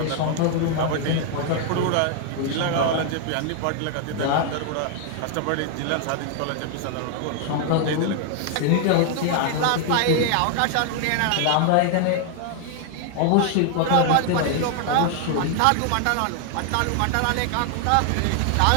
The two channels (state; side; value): different; both; correlation 0.00